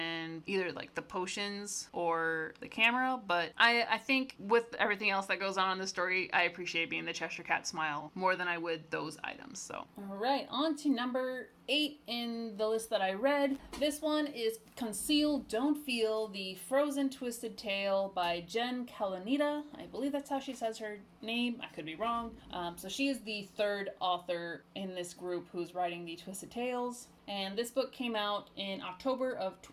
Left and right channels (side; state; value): both; identical; correlation 1.00